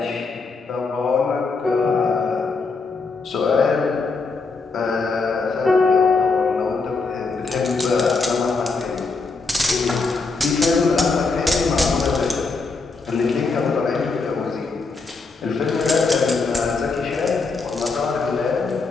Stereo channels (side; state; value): right; quieter; 4.1 dB